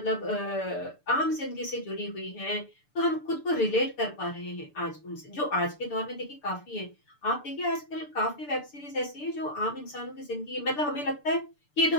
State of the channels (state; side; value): late; right; 6.8 ms